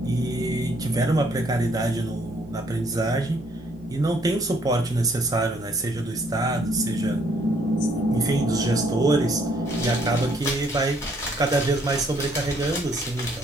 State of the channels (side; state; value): both; normal; correlation 0.66